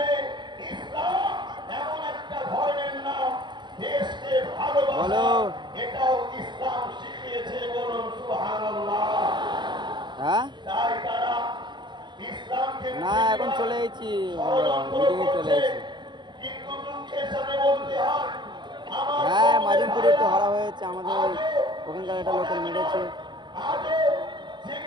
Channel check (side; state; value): left; late; 0.22 ms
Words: ইসলাম এমন একটা ধর্মের নাম, দেশকে ভালোবাসা এটাও ইসলাম শিখিয়েছে। বলুন সুবহানাল্লাহ। তাই তারা ইসলামকে না এখন চলে এসেছি, মিটিংয়ে চলে এসেছি। কিন্তু দুঃখের সাথে বলতে হয় হ্যাঁ মাজিমপুরে একটু হারা হয়েছে, আমাদের ওখানকার একটা লোকের মেরেছে,